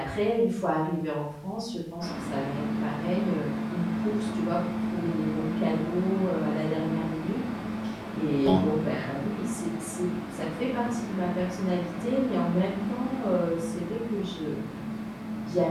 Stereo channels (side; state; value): both; identical; correlation 1.00